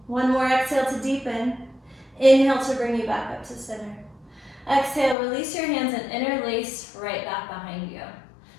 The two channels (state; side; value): drops out; right; at 5.2 s